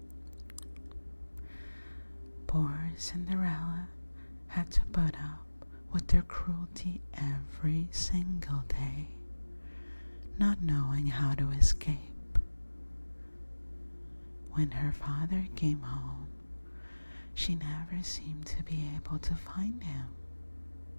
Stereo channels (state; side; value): inverted; both; correlation -1.00